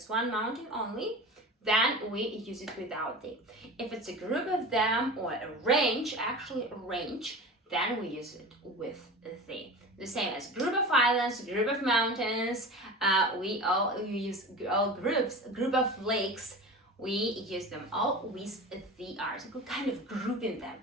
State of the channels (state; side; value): normal; both; correlation 0.33